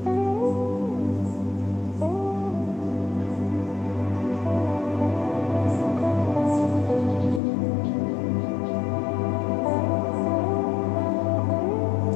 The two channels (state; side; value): drops out; right; at 7.4 s